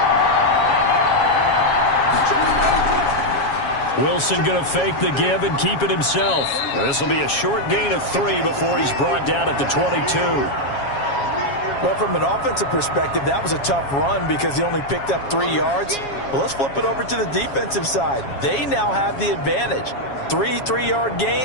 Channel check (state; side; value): late; right; 7.3 ms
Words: Wilson going to fake the give and keep it himself. This will be a short gain of 3 before he's brought down at the 22. Well, from an offensive perspective, that was a tough run because he only picked up 3 yards. Well, let's flip it over to the defensive side. They now have the advantage. 3 3-yard